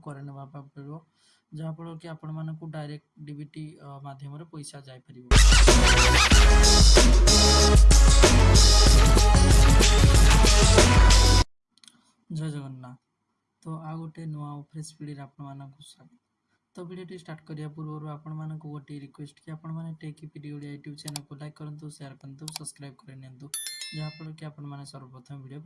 ना पड़ो जहाँफल कि आपण मानक डायरेक्ट डीबीटी माध्यम पैसा जापर। जय जगन्नाथ। तो आ गोटे नुआ फ्रेश पीढ़ी आपण मानक स्वागत। तो वीडियो स्टार्ट करिया पूर्व आपण मानक गोटे रिक्वेस्ट कि आपण माने tech PD Odia YouTube channel को लाइक करंतु शेयर करंतु सब्सक्राइब कर नियंतु जहाँफल कि आपण माने सर्वप्रथम वीडियो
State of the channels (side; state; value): both; identical; correlation 1.00